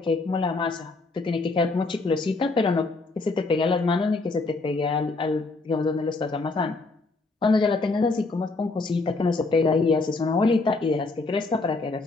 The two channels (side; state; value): right; quieter; 3.6 dB